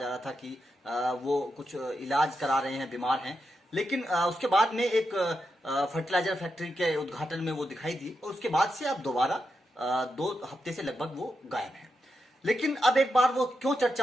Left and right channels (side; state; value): both; normal; correlation 0.86